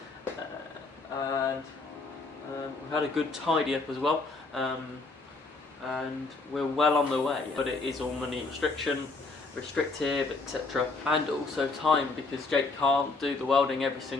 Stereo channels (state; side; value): quieter; right; 3.7 dB